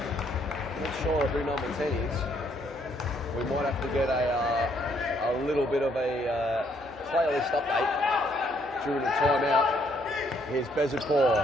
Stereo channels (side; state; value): both; normal; correlation 0.69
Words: Not sure who number 10 is. We might have to get a little bit of a playlist update during the timeout. Here's